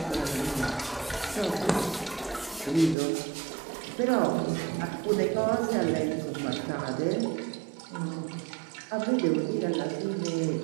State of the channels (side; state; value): left; drops out; at 3.0 s